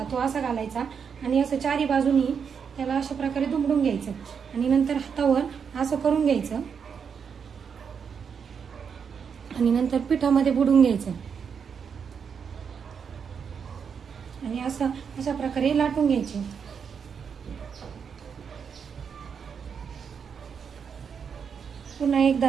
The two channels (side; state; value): left; quieter; 6.7 dB